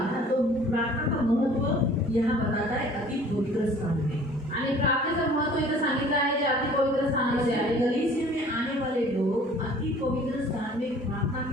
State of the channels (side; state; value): both; normal; correlation 0.50